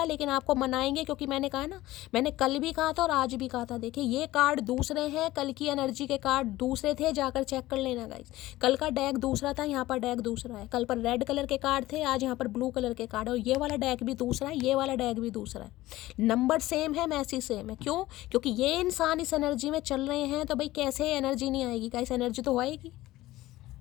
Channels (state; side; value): quieter; right; 16.9 dB